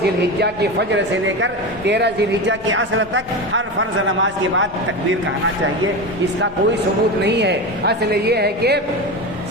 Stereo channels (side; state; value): left; noise; rumble, 22 dB below the sound